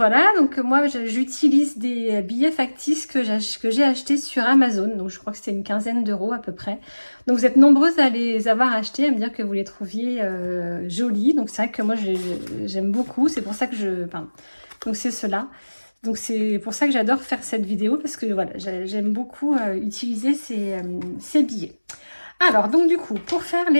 donc moi j'utilise des billets factices que j'ai achetés sur Amazon, donc je crois que c'était une quinzaine d'euros à peu près. Donc vous êtes nombreuses à les avoir achetés, à me dire que vous les trouviez jolis, donc c'est vrai que moi j'aime beaucoup, c'est pour ça que donc c'est cela. Donc c'est pour ça que j'adore faire cette vidéo, parce que voilà, j'aime beaucoup utiliser ces billets. Alors donc du coup, pour faire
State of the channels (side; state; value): both; inverted; correlation -1.00